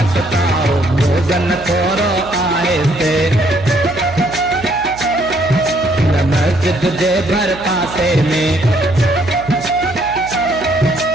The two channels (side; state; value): right; noise; hum, 17 dB below the sound